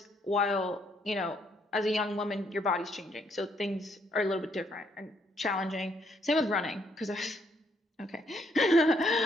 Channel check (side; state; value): both; normal; correlation 0.71